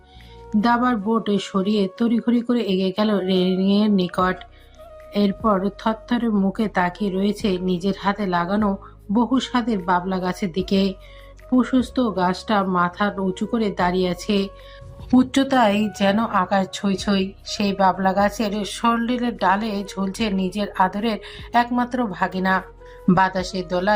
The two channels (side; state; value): both; identical; correlation 1.00